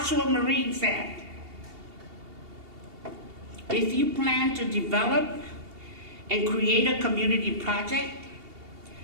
Marine said. If you plan to develop and create a community project,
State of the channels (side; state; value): left; late; 2.8 ms